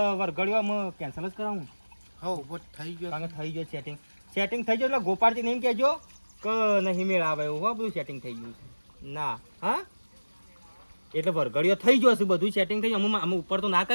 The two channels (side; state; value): both; inverted; correlation -1.00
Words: વરઘડ્યો અમે કેન્સલ જ કરાવું હો બસ થઈ ગયો કારણ કે થઈ ગયો સેટિંગ થઈ ગયું એટલે ગોપાળજી નહીં કહેજો કે નહીં મેળ આવે એવું હો બધું સેટિંગ થઈ ગયું છે ના હા એટલે વરઘડીઓ થઈ ગયો છે બધું સેટિંગ થઈ ગયું અમે ઉપર તો ના